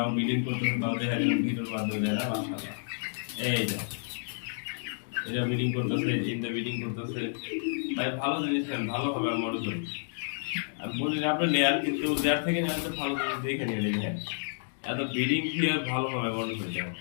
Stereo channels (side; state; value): right; silent; digital silence